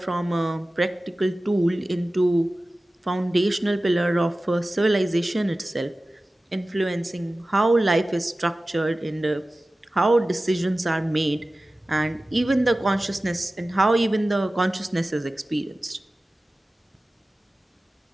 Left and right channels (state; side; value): normal; both; correlation 0.96